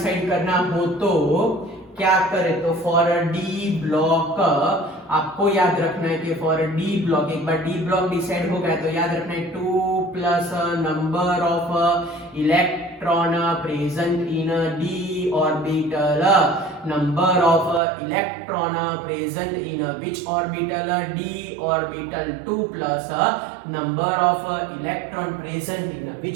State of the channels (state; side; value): drops out; left; at 17.8 s